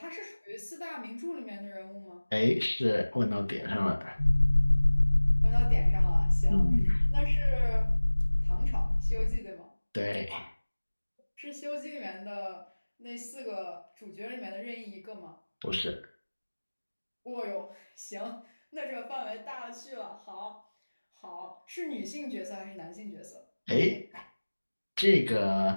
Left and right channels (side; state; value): both; inverted; correlation -1.00